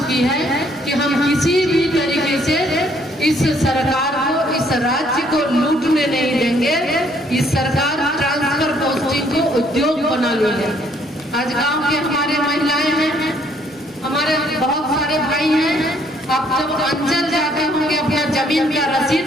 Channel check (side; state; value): both; normal; correlation 0.66